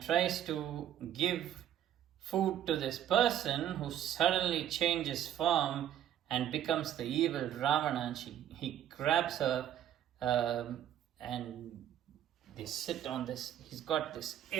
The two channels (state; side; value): quieter; left; 10.8 dB